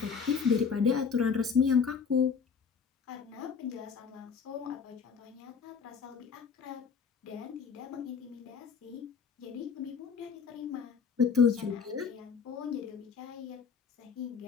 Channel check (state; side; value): quieter; right; 6.1 dB